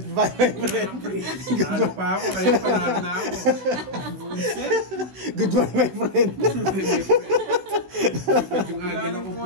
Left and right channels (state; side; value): late; left; 16 ms